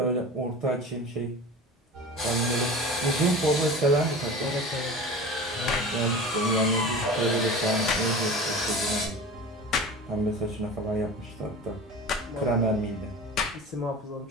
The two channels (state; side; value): normal; both; correlation 0.35